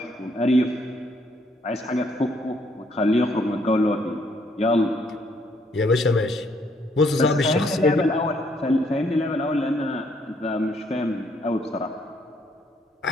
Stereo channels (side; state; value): both; normal; correlation 0.69